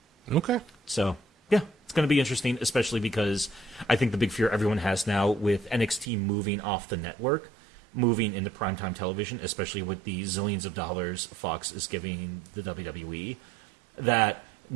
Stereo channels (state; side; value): drops out; left; at 6.1 s